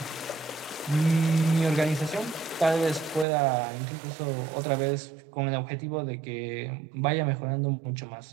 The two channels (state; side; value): drops out; left; at 3.2 s